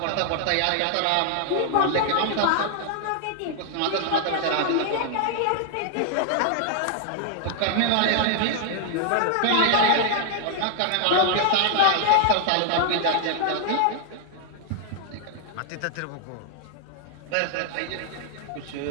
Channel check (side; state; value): both; different; correlation 0.00